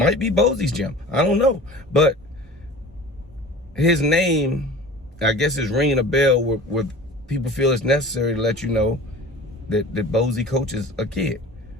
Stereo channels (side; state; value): both; normal; correlation 0.40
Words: be Bosey's gym. I don't know. But his name, I guess, is ringing a bell where people feel it's necessary to let you know that Bosey coaches a kid.